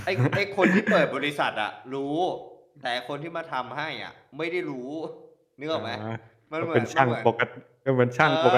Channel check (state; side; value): identical; both; correlation 1.00